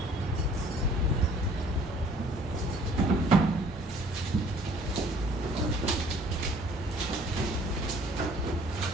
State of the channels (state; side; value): normal; both; correlation 0.56